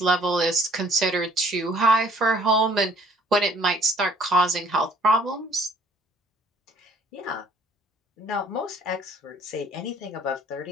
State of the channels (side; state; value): both; normal; correlation 0.58